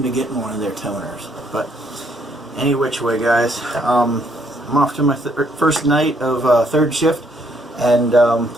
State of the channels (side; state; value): both; normal; correlation 0.69